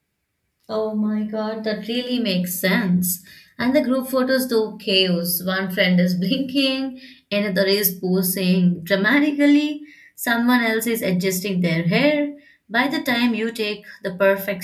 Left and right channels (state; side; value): identical; both; correlation 1.00